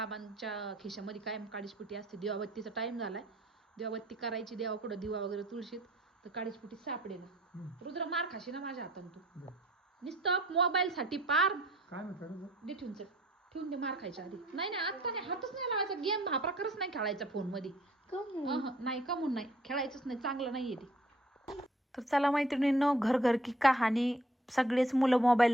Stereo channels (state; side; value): normal; both; correlation 0.57